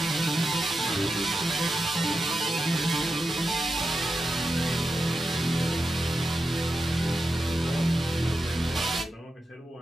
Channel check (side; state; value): both; normal; correlation 0.90